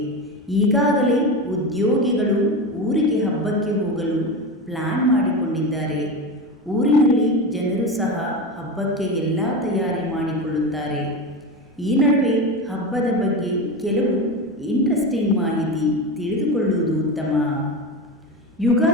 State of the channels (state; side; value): normal; both; correlation 0.22